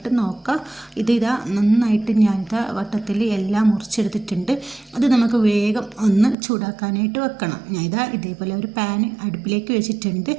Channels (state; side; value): drops out; left; at 6.4 s